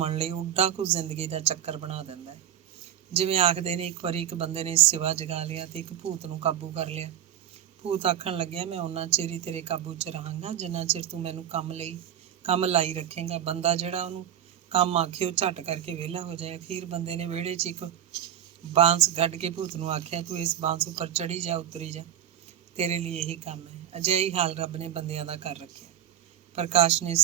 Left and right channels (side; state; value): left; quieter; 10.7 dB